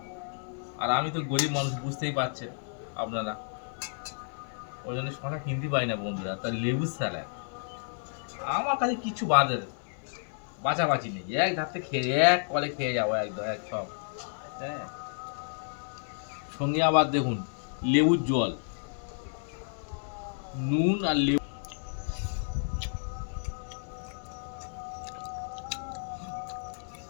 আর আমি তো গরিব মানুষ, বুঝতেই পারছেন আপনারা, ওই জন্য শশা কিনতে পারি না বন্ধুরা। তার লেবুর স্যালাড আমার কাছে কিছু বাঁচাবাচি নেই, এক ধারতে খেয়ে এক কলে খেয়ে যাবো একদম এক সব। হ্যাঁ, সঙ্গে আবার দেখুন লেবুর জল, নুন আর লেবু।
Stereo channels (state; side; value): silent; right; digital silence